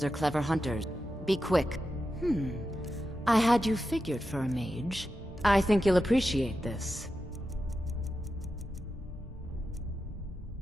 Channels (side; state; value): both; normal; correlation 0.90